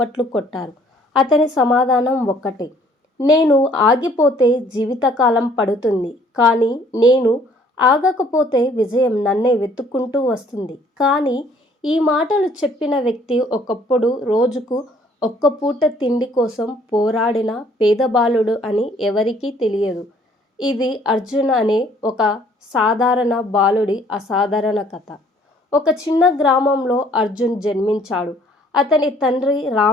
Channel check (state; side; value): normal; both; correlation 0.60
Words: కొట్టారు. అతని సమాధానం ఒక్కటే. నేను ఆగిపోతే జీవితకాలం పడుతుంది. కానీ నేను ఆగకపోతే విజయం నన్నే వెతుక్కుంటూ వస్తుంది. కానీ ఈ మాటలు చెప్పిన వ్యక్తి ఒకప్పుడు రోజుకు ఒక్క పూట తిండి కోసం పోరాడిన పేద బాలుడు అని ఎవరికీ తెలియదు. ఇది అర్జున్ అనే ఒక సాధారణ బాలుడి అసాధారణ కథ. ఒక చిన్న గ్రామంలో అర్జున్ జన్మించాడు. అతని తండ్రి